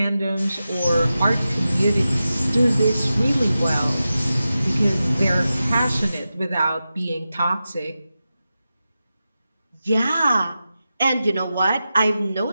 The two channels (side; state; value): both; inverted; correlation -0.92